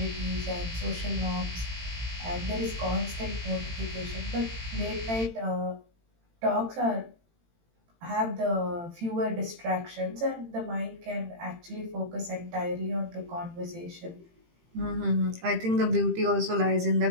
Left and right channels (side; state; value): left; late; 18 ms